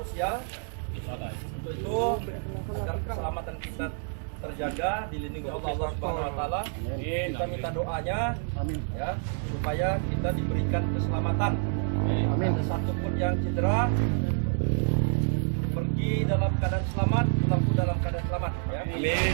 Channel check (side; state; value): left; silent; 59 dB below the other